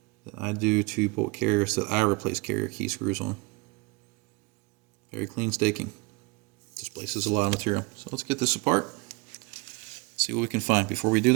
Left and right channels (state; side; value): quieter; left; 26.1 dB